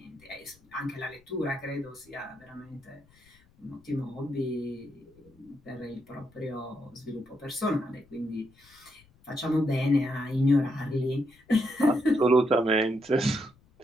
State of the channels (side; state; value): left; noise; rumble, 30 dB below the sound